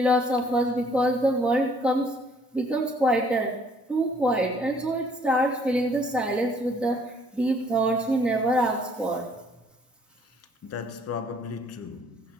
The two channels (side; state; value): both; normal; correlation 0.61